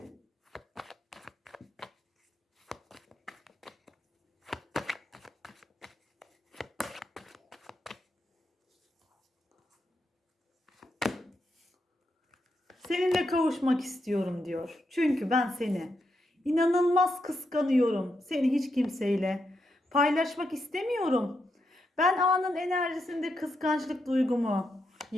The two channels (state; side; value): normal; both; correlation 0.83